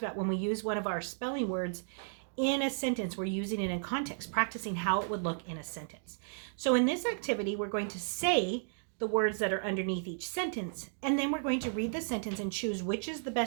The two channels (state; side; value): silent; left; digital silence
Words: about when we use one of our spelling words in a sentence, we're using it in context, practicing how it would look in a sentence. So in this activity, we're going to say the words that are underneath each sentence, and then we're going to read the sentence and choose which is the